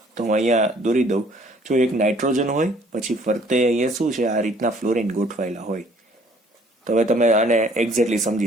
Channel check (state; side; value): normal; both; correlation 0.59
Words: તો હું અહીંયા દોરી દઉં. જો એક નાઇટ્રોજન હોય, પછી ફરતે અહીંયા શું છે? આ રીતના ફ્લોરિન ગોઠવાયેલા હોય. તો હવે તમે આને એક્ઝેક્ટલી